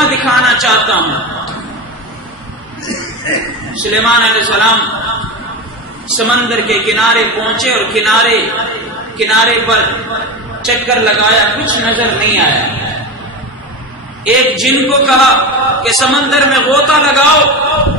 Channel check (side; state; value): both; normal; correlation 0.23